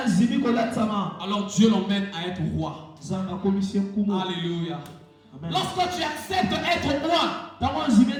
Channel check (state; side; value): identical; both; correlation 1.00